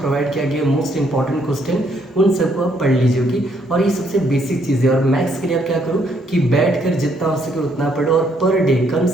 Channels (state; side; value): normal; both; correlation 0.70